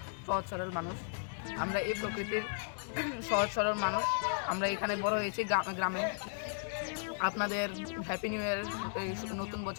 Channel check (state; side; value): silent; right; digital silence